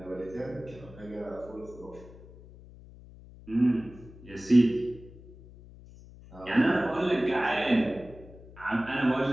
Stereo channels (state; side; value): noise; left; hum, 19 dB below the sound